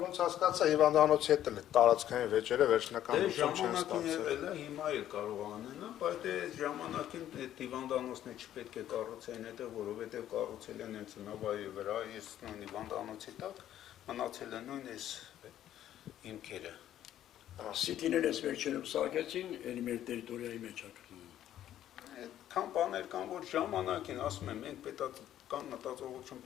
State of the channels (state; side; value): quieter; right; 11.7 dB